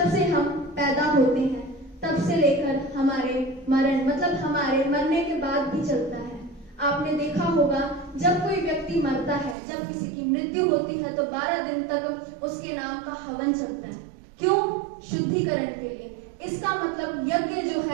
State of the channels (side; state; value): left; drops out; at 9.6 s